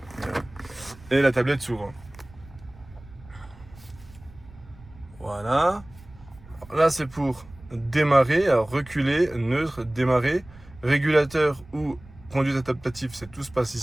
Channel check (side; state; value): right; noise; rumble, 21 dB below the sound